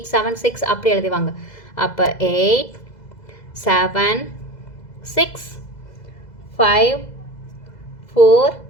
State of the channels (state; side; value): late; right; 2.0 ms